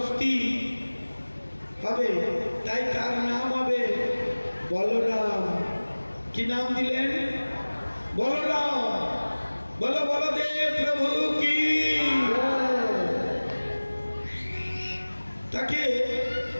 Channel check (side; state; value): both; inverted; correlation -1.00